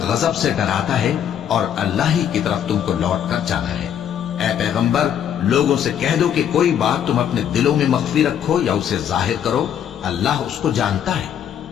غضب سے ڈراتا ہے، اور اللہ ہی کی طرف تم کو لوٹ کر جانا ہے۔ اے پیغمبر، لوگوں سے کہہ دو کہ کوئی بات تم اپنے دلوں میں مخفی رکھو یا اسے ظاہر کرو، اللہ اس کو جانتا ہے،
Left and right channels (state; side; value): quieter; right; 9.3 dB